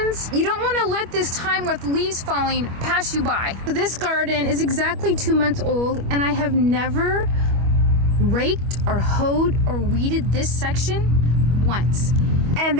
You don't want to let this time with leaves falling pass you by. This garden is exactly 2 months old, and I have never raked or hoed or weeded this section once, and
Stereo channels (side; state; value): left; late; 25 ms